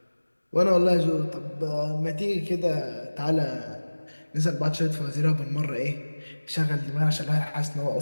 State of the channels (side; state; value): both; inverted; correlation -1.00